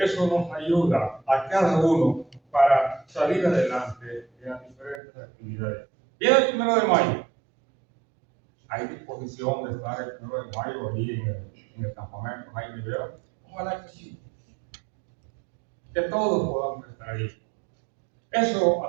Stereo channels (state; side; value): drops out; left; at 5.0 s